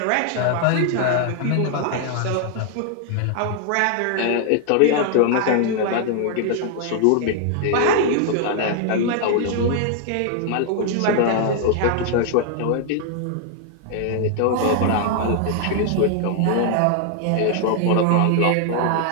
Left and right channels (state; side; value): different; both; correlation 0.00